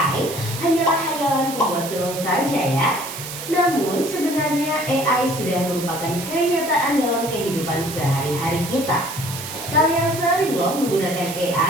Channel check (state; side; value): noise; right; hiss, 9 dB below the sound